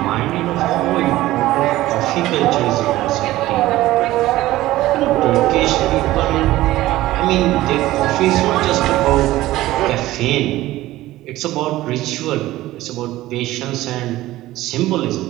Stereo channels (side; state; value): left; quieter; 16.3 dB